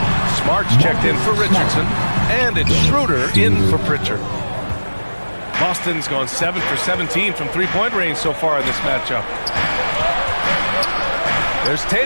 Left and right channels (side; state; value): both; inverted; correlation -1.00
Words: Smart's checked in for Richardson. And it's Schroeder in for Pritchard. Boston's gone 7 for 17 from three-point range so far in this matchup. There's